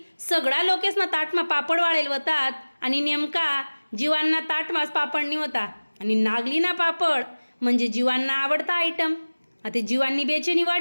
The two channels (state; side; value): inverted; both; correlation -1.00